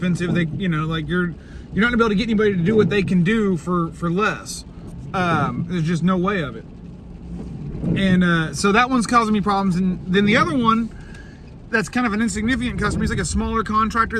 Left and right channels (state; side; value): identical; both; correlation 1.00